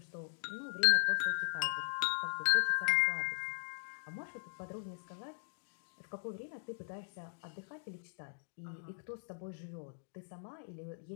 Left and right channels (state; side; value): silent; right; digital silence